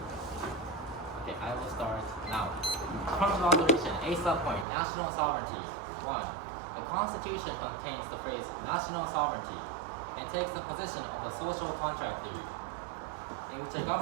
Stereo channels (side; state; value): left; drops out; at 4.7 s